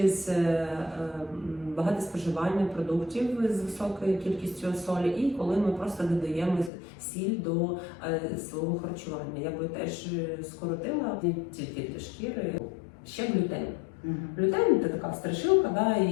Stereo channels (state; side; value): drops out; right; at 6.7 s